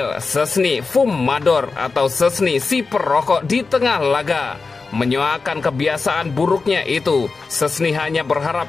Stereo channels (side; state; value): right; quieter; 4.3 dB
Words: Szczesny fumador atau Szczesny si perokok di tengah laga. Menyoakan kebiasaan buruknya itu, Szczesny hanya